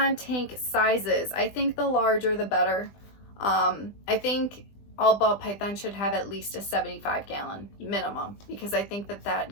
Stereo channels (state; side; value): late; right; 20 ms